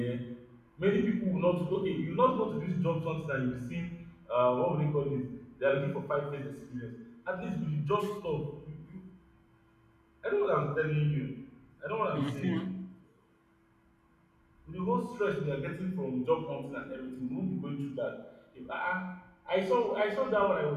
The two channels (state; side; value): identical; both; correlation 1.00